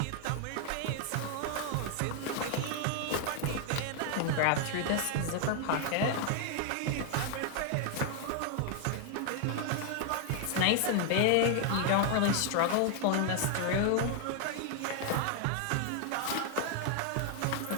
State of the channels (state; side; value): different; both; correlation 0.00